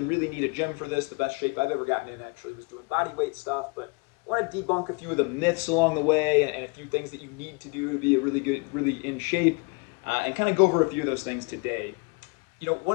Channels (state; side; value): quieter; right; 30.9 dB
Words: really need a gym for this. The best shape I've ever gotten in actually was doing body weight stuff, but I want to debunk a few of the myths along the way and a few things that you need to do to be a really in shape, and kind of go over a few of those things today. You know,